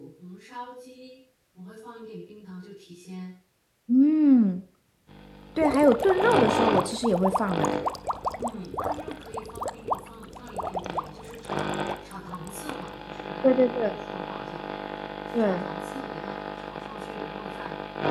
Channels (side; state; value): both; identical; correlation 1.00